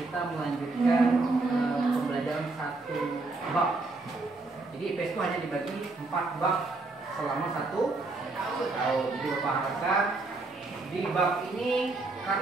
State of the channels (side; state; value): left; quieter; 3.4 dB